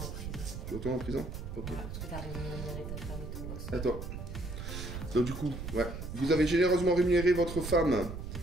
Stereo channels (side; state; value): right; noise; rumble, 7 dB below the sound